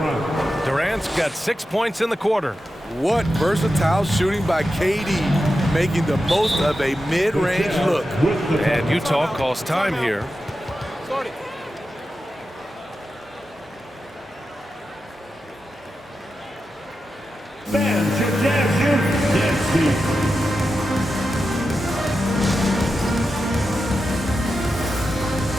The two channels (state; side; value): normal; both; correlation 0.90